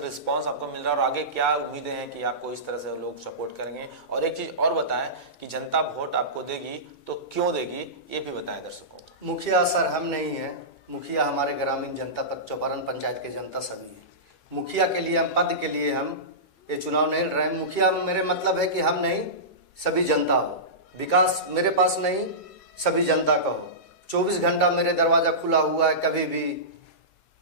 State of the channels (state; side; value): late; right; 9.2 ms